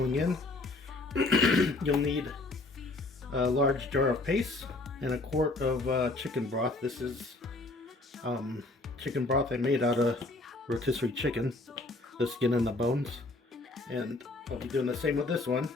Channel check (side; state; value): right; quieter; 3.0 dB